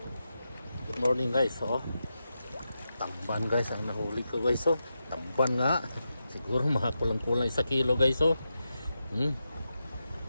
good morning guys. Tamban guys ang nahuli ko guys. Tamban nga, siguro mga kulang-kulang 1 kilo guys. Dami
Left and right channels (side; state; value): both; inverted; correlation -0.88